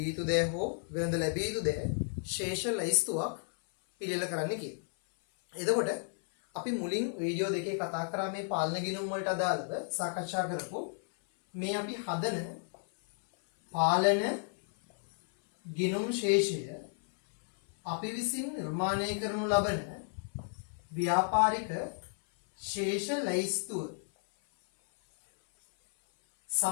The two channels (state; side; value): silent; right; 56 dB below the other